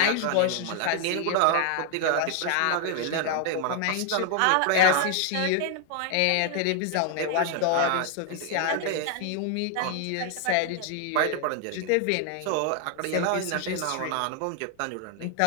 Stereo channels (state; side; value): different; both; correlation 0.00